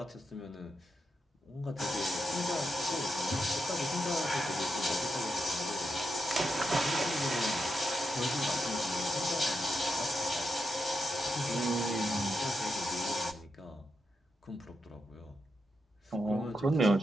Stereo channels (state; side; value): normal; both; correlation 0.85